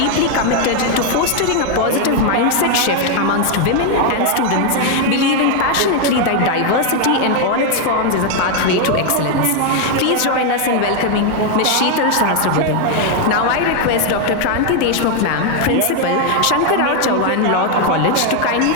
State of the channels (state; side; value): different; both; correlation 0.00